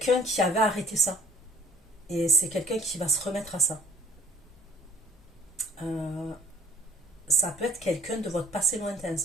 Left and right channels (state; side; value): normal; both; correlation 0.58